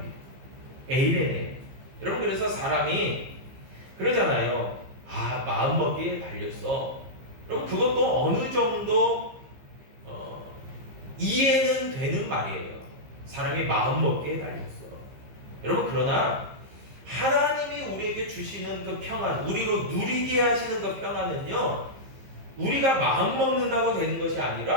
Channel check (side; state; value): left; late; 15 ms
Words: 에이레네. 여러분, 그래서 사람이 그러잖아요. 아, 마음먹기에 달렸어. 여러분, 그것도 어느 정도 이해는 되는 말이에요. 사람이 마음먹기에 달렸어. 여러분, 그러나 하나님이 우리에게 주시는 그 평안, 우리로 누리게 하시는 그 평안은요, 우리가 마음먹는다고 되는 것이